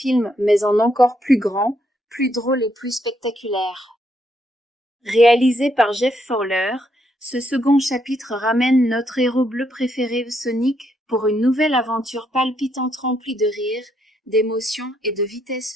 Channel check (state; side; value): normal; both; correlation 0.75